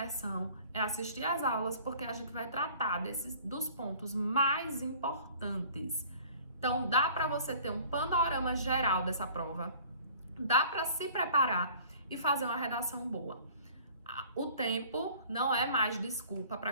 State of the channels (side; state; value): both; inverted; correlation -0.50